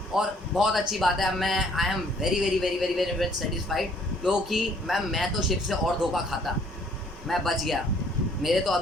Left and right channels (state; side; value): normal; both; correlation 0.61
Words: और बहुत अच्छी बात है, मैं आई am very very very very very very satisfied, क्योंकि मैम मैं तो शिव से और धोखा खाता, मैं बच गया। मेरे तो